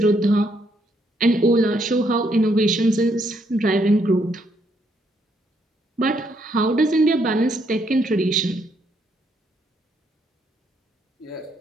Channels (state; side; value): normal; both; correlation 0.73